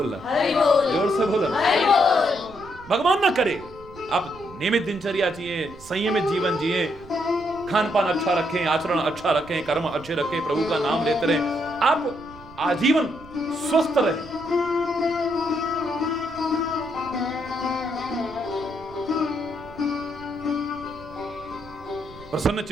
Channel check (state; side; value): noise; right; rumble, 20 dB below the sound